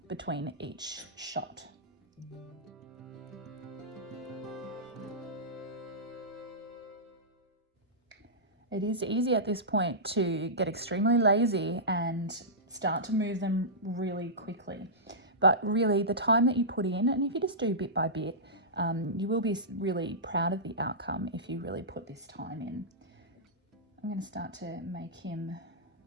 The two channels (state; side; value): normal; both; correlation -0.16